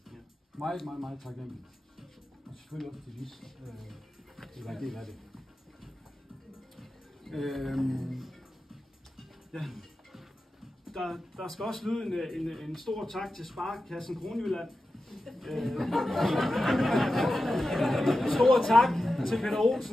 Meget, meget, meget taknemmelig. Og selvfølgelig også til Lis, at være en del af det. Ja. Der skal også lyde en stor tak til Sparekassen Kronjylland. Stor tak til Peter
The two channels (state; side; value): normal; both; correlation 0.92